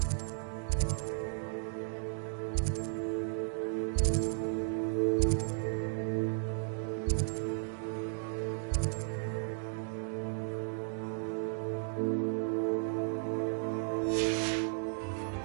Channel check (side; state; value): left; silent; digital silence